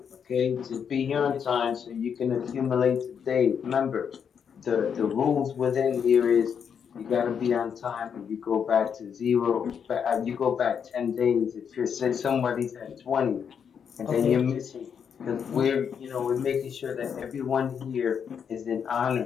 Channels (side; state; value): right; quieter; 7.3 dB